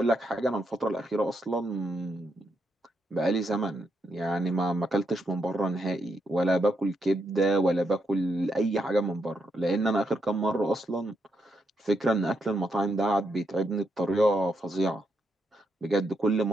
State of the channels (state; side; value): normal; both; correlation 0.80